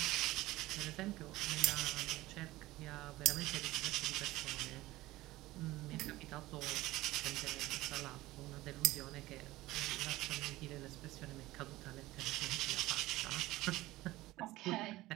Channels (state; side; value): quieter; left; 17.9 dB